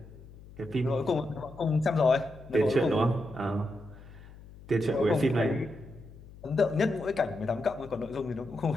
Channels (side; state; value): left; noise; hum, 19 dB below the sound